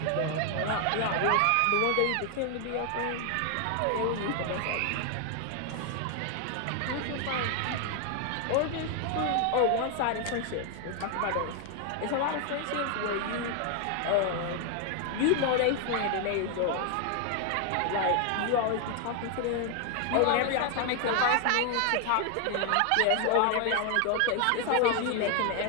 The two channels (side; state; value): both; different; correlation 0.00